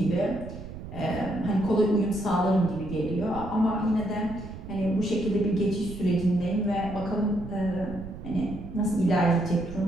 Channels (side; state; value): right; noise; rumble, 11 dB below the sound